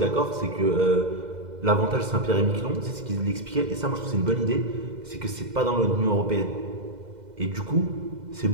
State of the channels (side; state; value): left; late; 2.0 ms